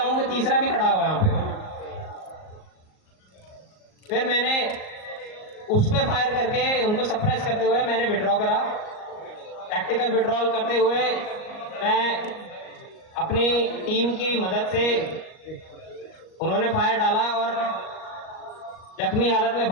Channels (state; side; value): late; right; 38 ms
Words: कि तीसरा भी खड़ा हुआ है यहाँ पे। फिर मैंने उस पे फायर करके उनको सप्रेस करते हुए मैंने विड्रॉ करा। टैक्टिकल विड्रॉल करते हुए मैं अपनी टीम की मदद से, उन्होंने फायर डाला और जख्मी हालत में